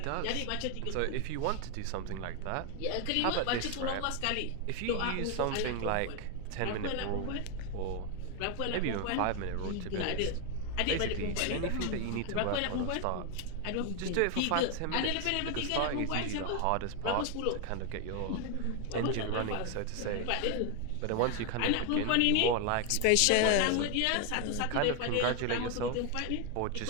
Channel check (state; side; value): different; both; correlation 0.01